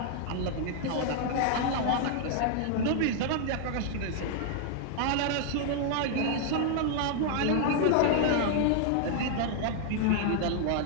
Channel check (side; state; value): both; different; correlation 0.00